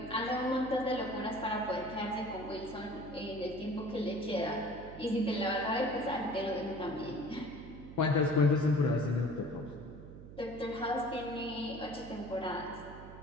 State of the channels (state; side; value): noise; right; hum, 14 dB below the sound